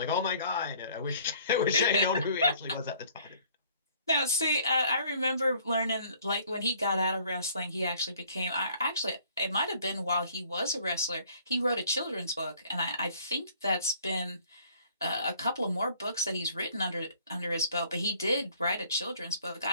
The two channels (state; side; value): inverted; both; correlation -0.58